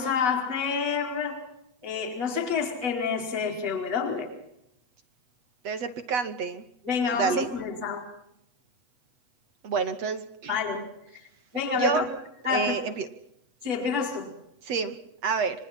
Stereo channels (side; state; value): left; late; 8.1 ms